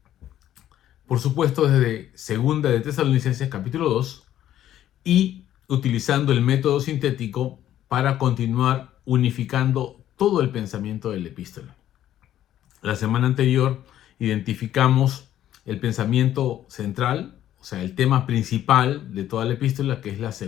Por supuesto, desde Segunda de Tesalonicenses capítulo 2 y utilizando el método sintético para continuar unificando todo el pensamiento de la epístola. La semana anterior identificamos el pensamiento central, o sea, el tema principal de toda la epístola, que es la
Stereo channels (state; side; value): quieter; right; 12.0 dB